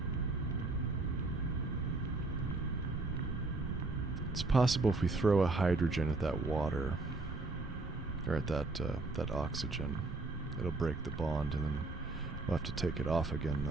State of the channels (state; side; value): quieter; left; 3.3 dB